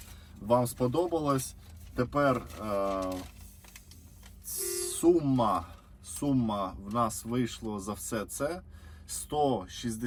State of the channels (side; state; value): both; identical; correlation 1.00